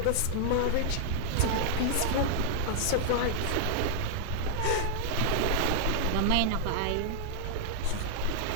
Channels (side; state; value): both; different; correlation -0.01